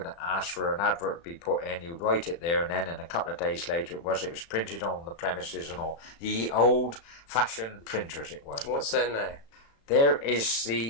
ask for an advert to be put in. You'd write it there, and then in a couple of days later it was printed on the premises and all. The old-fashioned printers it was. What's there now? There is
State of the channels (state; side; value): late; right; 35 ms